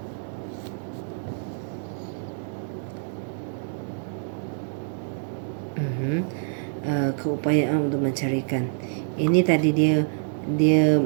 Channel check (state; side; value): silent; left; digital silence